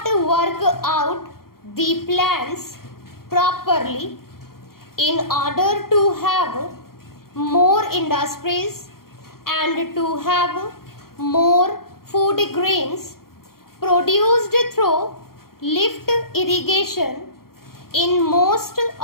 work out the plans properly in order to have more industries and to have more food grains produced through lift irrigation in most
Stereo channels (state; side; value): late; right; 0.93 ms